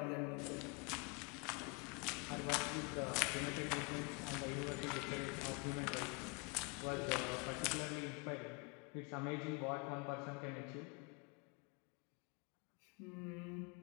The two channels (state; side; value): quieter; right; 32.3 dB